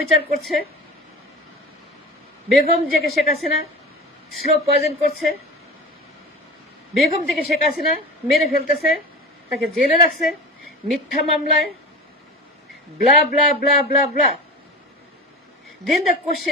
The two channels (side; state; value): both; normal; correlation 0.32